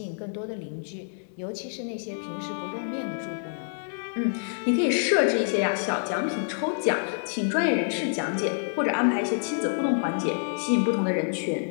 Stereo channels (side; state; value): right; silent; digital silence